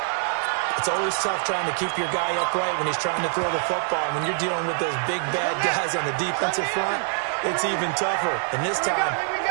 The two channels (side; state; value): left; silent; digital silence